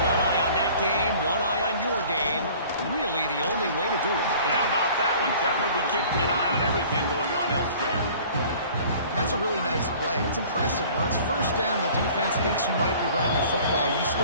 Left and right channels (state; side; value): inverted; both; correlation -0.49